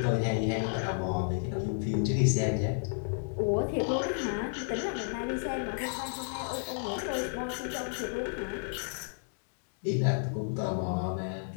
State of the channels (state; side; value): silent; right; digital silence